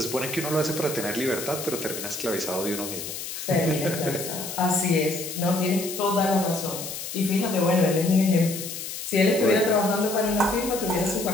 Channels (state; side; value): noise; left; hiss, 8 dB below the sound